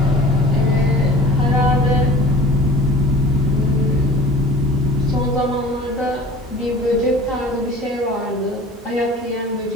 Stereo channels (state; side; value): normal; both; correlation 0.44